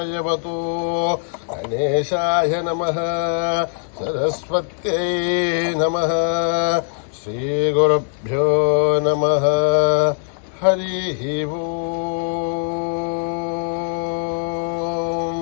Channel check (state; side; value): silent; right; digital silence